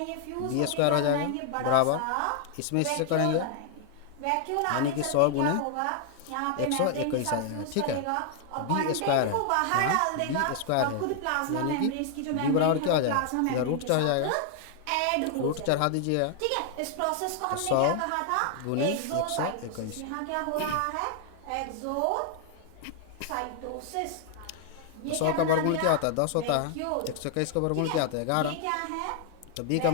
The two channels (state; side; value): different; both; correlation 0.00